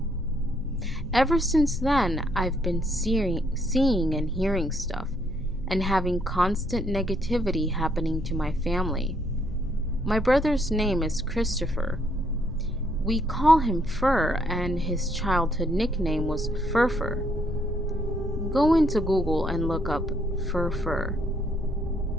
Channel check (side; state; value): right; noise; hum, 17 dB below the sound